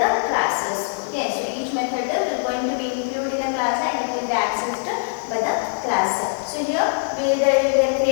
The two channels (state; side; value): silent; right; 64 dB below the other